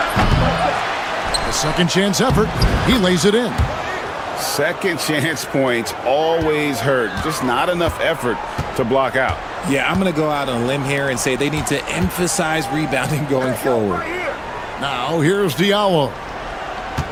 A second chance effort. He lays it in. Second chance points always hurt. Just not enough effort to block out. Yeah, I'm going to go out on a limb here and say they need to emphasize rebounding going forward. Now here's Diallo.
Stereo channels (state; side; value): identical; both; correlation 1.00